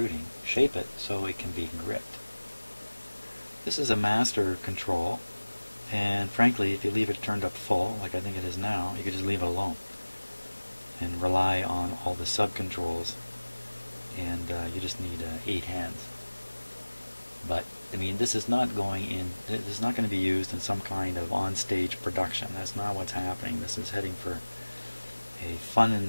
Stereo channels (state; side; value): inverted; both; correlation -1.00